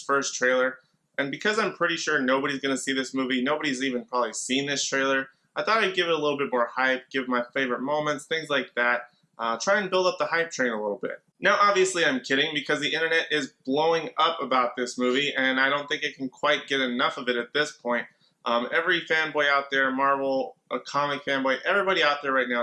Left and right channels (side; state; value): both; identical; correlation 1.00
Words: first trailer, and because I'm pretty sure nobody's going to see this movie, nobody's even probably seen this trailer, I thought I'd give it a little bit more hype, give my favorite moments, things like that, try and build up the hype train a little bit. Now obviously I'm kidding because the internet is blowing up about this movie and I don't think it can quite get enough of it at this point. Every fanboy out there, Marvel, a comic fanboy, everybody out there right now